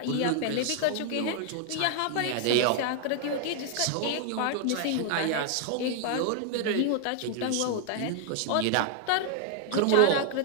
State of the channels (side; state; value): both; different; correlation 0.00